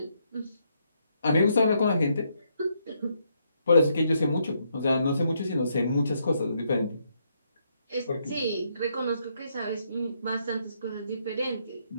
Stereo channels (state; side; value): inverted; both; correlation -0.75